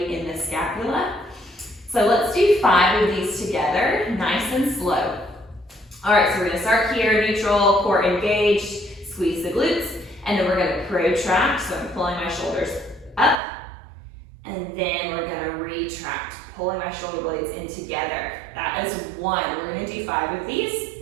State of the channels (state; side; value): drops out; left; at 13.4 s